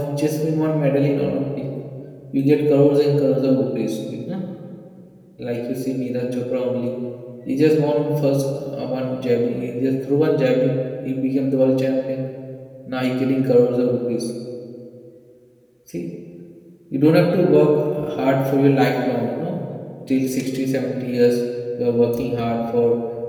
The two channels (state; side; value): identical; both; correlation 1.00